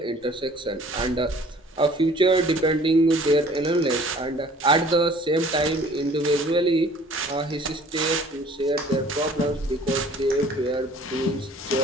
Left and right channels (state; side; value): normal; both; correlation 0.52